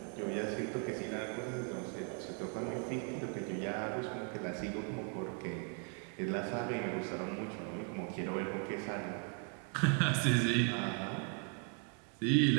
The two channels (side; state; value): left; quieter; 37.5 dB